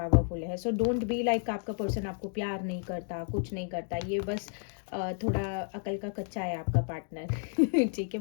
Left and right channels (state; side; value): silent; right; 57 dB below the other